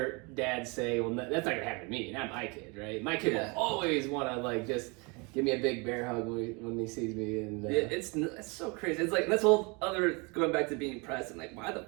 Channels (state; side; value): quieter; left; 29.6 dB